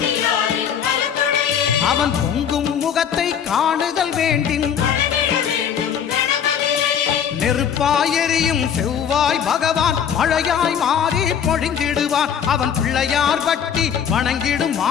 அவன் பொங்கும் முகத்தை காணுதல் வேண்டின் நெருப்பாய் எரியும் செவ்வாய் பகவான் மழையாய் மாறி பொழிந்திடுவான் அவன் பிள்ளையார் பட்டி வணங்கிடும்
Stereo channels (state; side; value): quieter; right; 8.2 dB